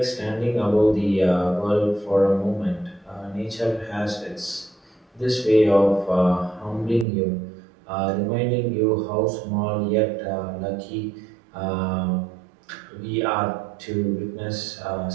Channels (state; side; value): drops out; left; at 7.1 s